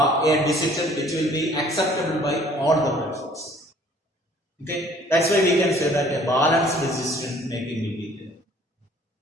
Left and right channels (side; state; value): both; normal; correlation 0.56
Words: decision which will be acceptable by all the persons. Okay, that's why we can say that a balanced decision making will be there.